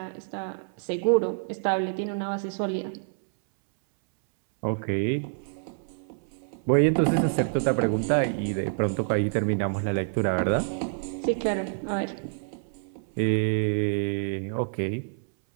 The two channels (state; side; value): silent; left; 59 dB below the other